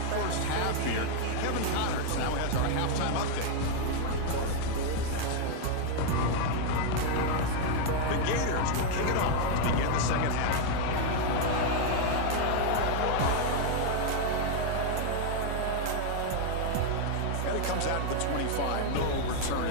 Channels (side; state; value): both; different; correlation 0.00